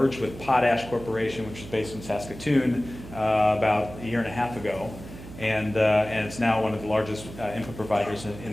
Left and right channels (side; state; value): right; noise; hum, 14 dB below the sound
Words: with Potash Corporation, which is based in Saskatoon, about a year and a half ago. And it's now one of the largest input providers in